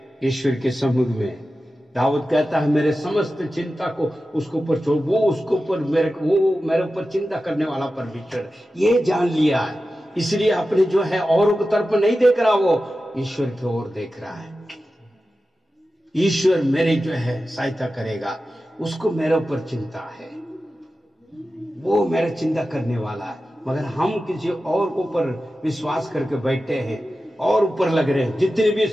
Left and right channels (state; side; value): normal; both; correlation 0.93